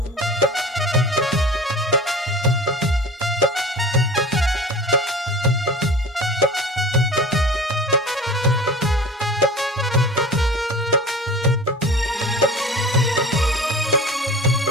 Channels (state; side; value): normal; both; correlation 0.38